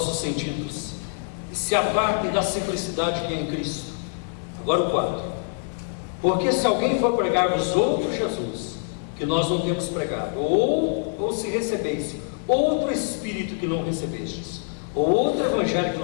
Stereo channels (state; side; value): silent; right; 62 dB below the other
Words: sentidos, e se apartem da simplicidade que é em Cristo. Agora o 4. Porque se alguém for pregar-vos outro Jesus, que nós não temos pregado, ou se recebeis outro Espírito que não recebestes, ou outro Evangelho que